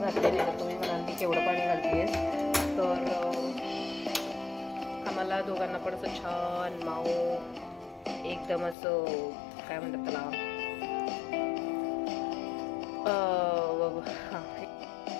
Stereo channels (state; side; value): drops out; right; at 8.8 s